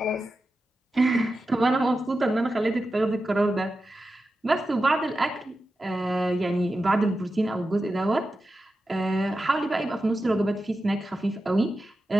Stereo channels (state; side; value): normal; both; correlation 0.91